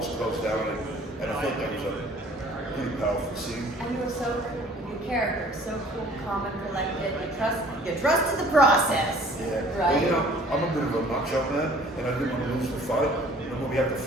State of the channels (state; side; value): normal; both; correlation 0.53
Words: close down and I thought that was a pretty powerful scene. And you were so cool, your character, so cool, calm and collected. You trusted the process. Yeah. Right? Well, you know, I'm a bit of a macho man, and I didn't want to lose the fight. You know, when we had the